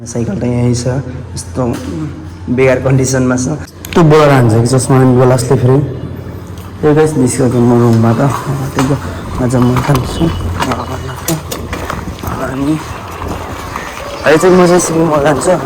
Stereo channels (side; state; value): both; identical; correlation 1.00